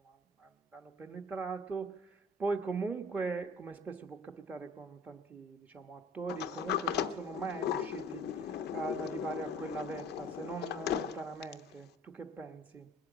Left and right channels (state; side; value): normal; both; correlation 0.49